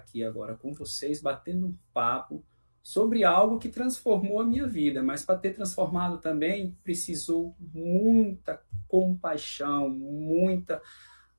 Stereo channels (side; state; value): both; inverted; correlation -1.00